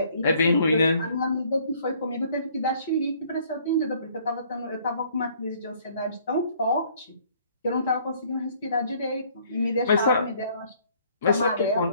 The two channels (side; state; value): both; inverted; correlation -0.60